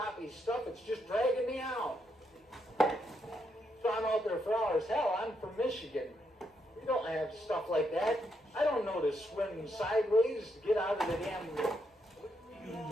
stuff, it's just dragging me out. So I'm out there for hours. Hell, I'm from Michigan. We don't have stuff like that. I don't know to swim sideways to get out of the damn,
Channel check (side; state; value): both; normal; correlation 0.79